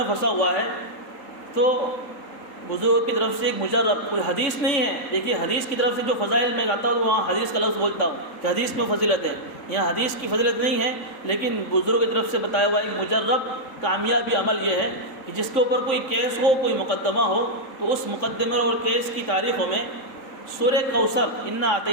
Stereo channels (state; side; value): late; right; 3.8 ms